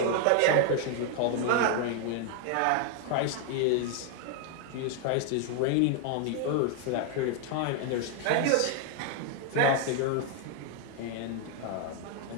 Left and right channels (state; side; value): different; both; correlation 0.00